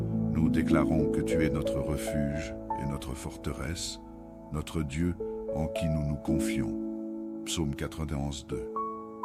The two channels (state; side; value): identical; both; correlation 1.00